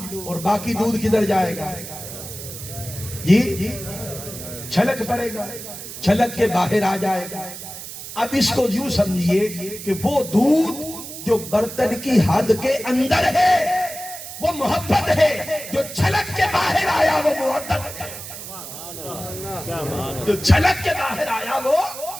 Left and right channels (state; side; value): noise; right; hiss, 11 dB below the sound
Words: اور باقی دودھ کدھر جائے گا جی؟ چھلک پڑے گا، چھلک کے باہر آ جائے گا۔ اب اس کو یوں سمجھیے کہ وہ دودھ جو برتن کی حد کے اندر ہے وہ محبت ہے، جو چھلک کے باہر آیا وہ مودت ہے۔ جو چھلک کے باہر آیا وہ